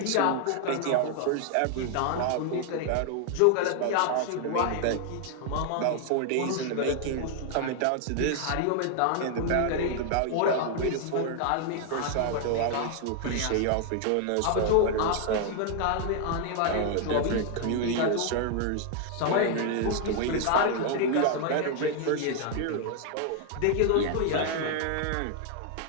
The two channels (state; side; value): different; both; correlation 0.00